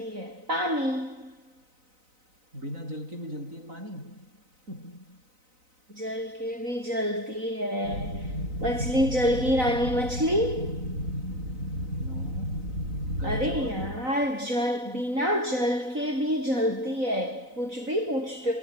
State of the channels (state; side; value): late; left; 4.0 ms